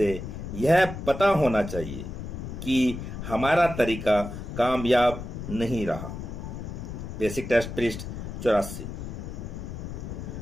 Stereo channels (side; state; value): left; noise; rumble, 8 dB below the sound